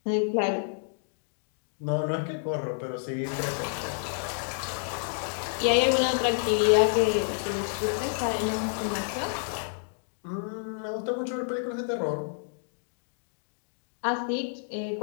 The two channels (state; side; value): silent; right; digital silence